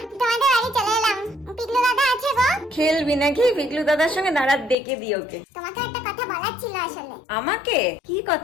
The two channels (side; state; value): right; drops out; at 4.8 s